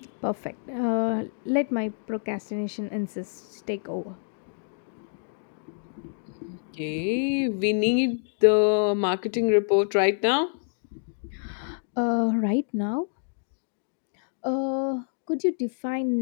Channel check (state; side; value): silent; right; digital silence